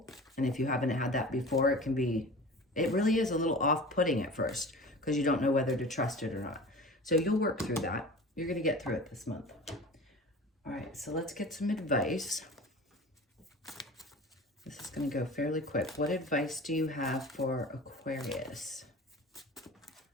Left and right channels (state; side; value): normal; both; correlation 0.37